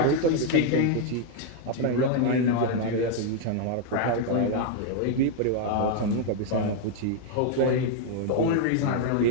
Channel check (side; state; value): both; different; correlation 0.00